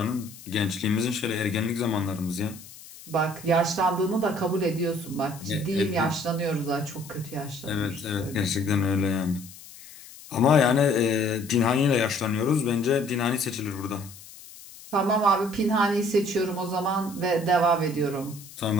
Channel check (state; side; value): noise; left; hiss, 18 dB below the sound